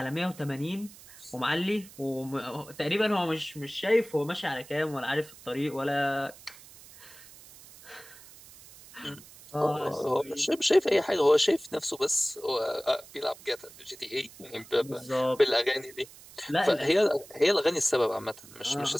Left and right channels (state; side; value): noise; right; hiss, 20 dB below the sound